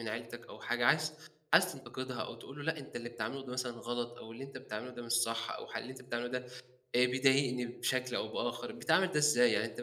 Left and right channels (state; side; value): identical; both; correlation 1.00